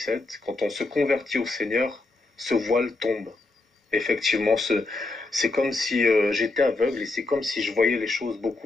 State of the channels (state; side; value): quieter; right; 3.2 dB